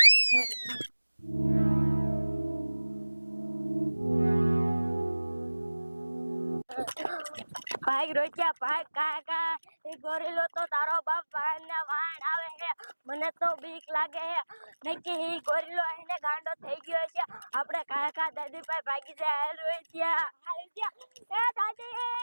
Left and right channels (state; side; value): inverted; both; correlation -1.00